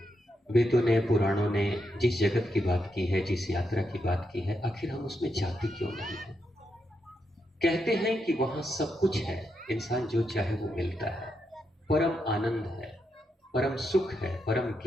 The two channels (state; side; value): normal; both; correlation 0.83